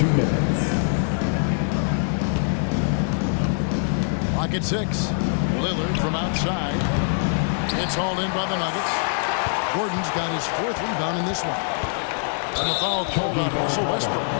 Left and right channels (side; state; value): right; silent; digital silence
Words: minutes. Clock at 6. Lillard from outside. It's hauled in by the Nuggets. Gordon's got his 4th rebound in this one. And the foul called on Russell Westbrook.